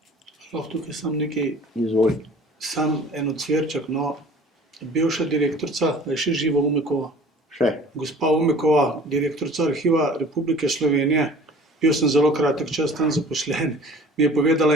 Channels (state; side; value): normal; both; correlation 0.47